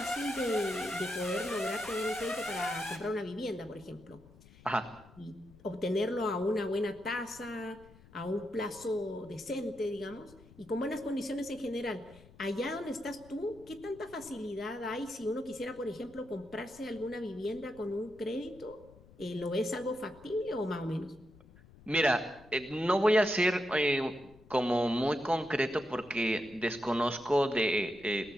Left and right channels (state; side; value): noise; left; rumble, 23 dB below the sound